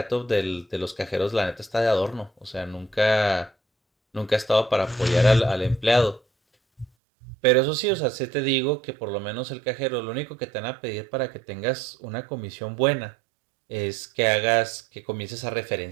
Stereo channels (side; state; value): left; drops out; at 6.9 s